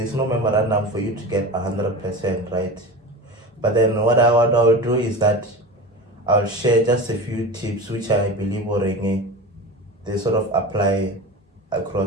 no memorandum for you to get 100%, right? But then what I'll do is that I'll share just a few tips which I believe they sort of apply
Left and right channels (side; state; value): both; normal; correlation 0.29